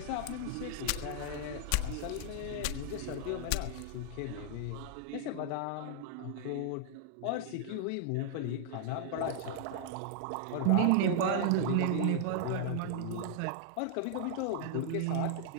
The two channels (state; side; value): different; both; correlation 0.00